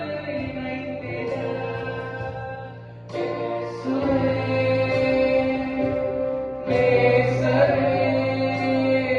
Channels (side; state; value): both; identical; correlation 1.00